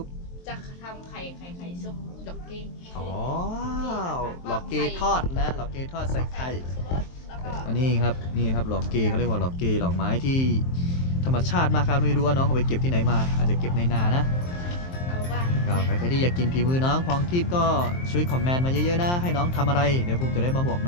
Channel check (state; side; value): late; right; 23 ms